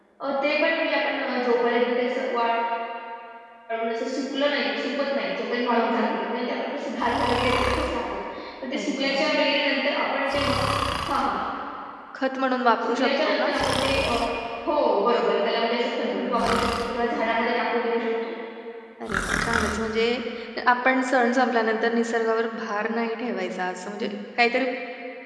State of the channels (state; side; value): identical; both; correlation 1.00